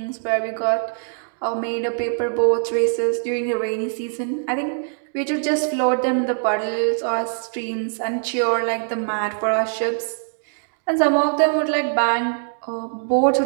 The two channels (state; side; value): silent; left; digital silence